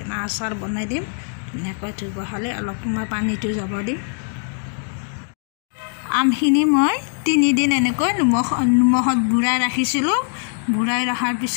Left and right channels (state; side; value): silent; right; 55 dB below the other